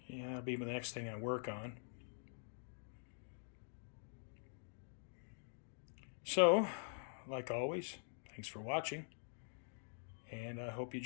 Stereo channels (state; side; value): silent; right; digital silence